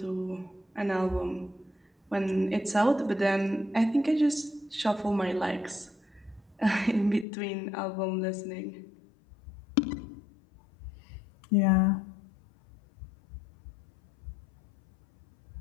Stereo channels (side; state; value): right; drops out; at 7.2 s